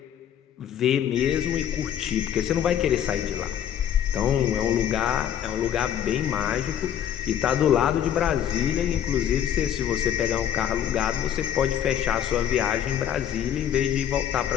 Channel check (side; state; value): right; quieter; 10.0 dB